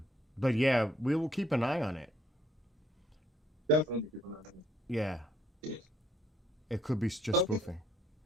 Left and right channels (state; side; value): normal; both; correlation 0.67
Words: But yeah, we will keep an eye on it. Definitely. Yeah, it could be just Okay. spoofing.